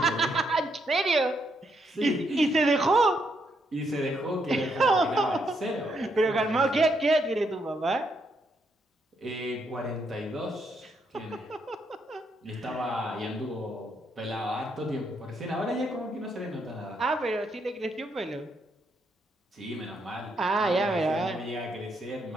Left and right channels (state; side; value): normal; both; correlation 0.77